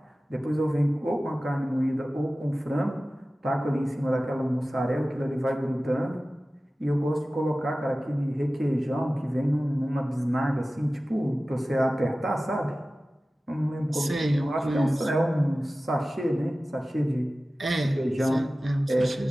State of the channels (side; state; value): both; normal; correlation 0.96